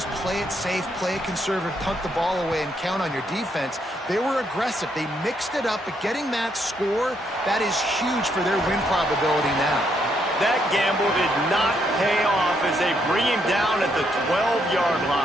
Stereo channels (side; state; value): both; normal; correlation 0.75